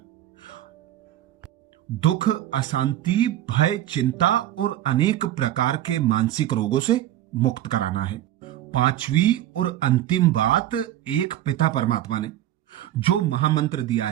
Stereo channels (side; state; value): left; quieter; 13.1 dB